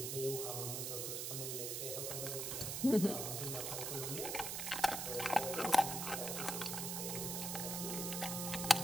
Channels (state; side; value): noise; right; hiss, 2 dB below the sound